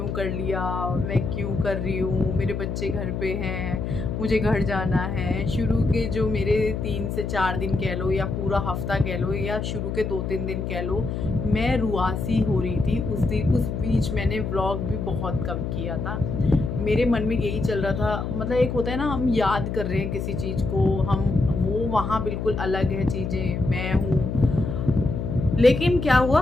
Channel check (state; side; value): noise; left; hum, 3 dB below the sound